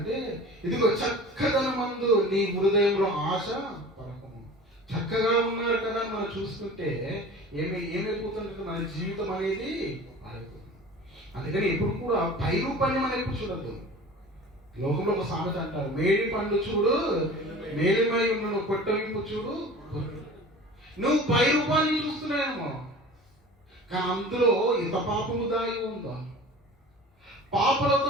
ఇదిగో చక్కదనమందు నీ హృదయంలో ఆశ పడకము. చక్కగా ఉన్నారు కదా అని మనం చూస్తుంటే ఏమైపోతుందంటే మన జీవితం అనేది మారిపోతుంది. అందుకని ఎప్పుడు కూడా పై రూపాన్ని మనం ఎప్పుడు చూడద్దు. లోకంలో ఒక సామెత అంటారు, మేడి పండు చూడు మేలిమై ఉన్న కొట్టవింపు చూడు. నువ్వు పై రూపాన్ని చూస్తున్నాయేమో, కానీ అందులో ఇంత పాపము దాగి ఉందా?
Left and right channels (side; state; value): both; normal; correlation 0.40